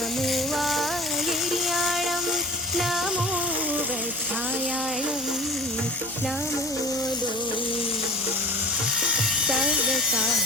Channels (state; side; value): noise; right; hum, 25 dB below the sound